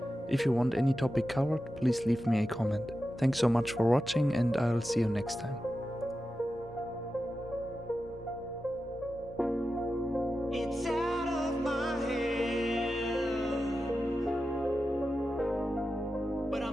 If you want any topic covered, please leave me a comment. Thanks so much for watching, and I'll see you next time. It's out of my hand, but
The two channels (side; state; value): both; normal; correlation 0.91